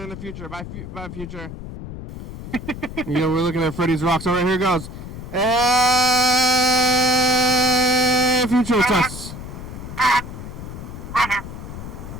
the future, bye future. We're looking at Freddy's Rocks. All right, here it goes. Future, it's us.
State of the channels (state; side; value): noise; left; rumble, 10 dB below the sound